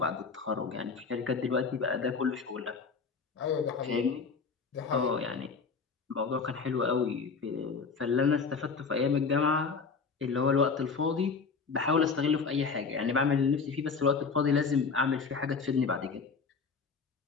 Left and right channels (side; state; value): right; quieter; 5.1 dB